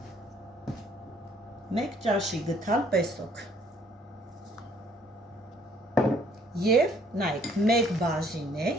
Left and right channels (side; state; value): both; normal; correlation 0.62